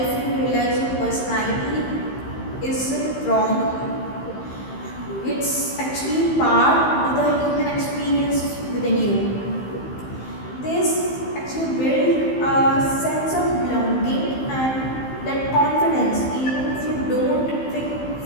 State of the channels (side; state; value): right; late; 15 ms